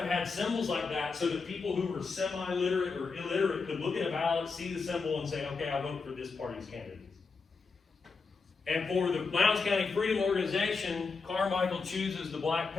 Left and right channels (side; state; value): right; quieter; 4.6 dB